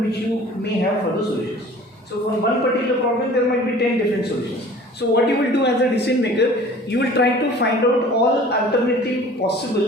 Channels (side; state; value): both; normal; correlation 0.46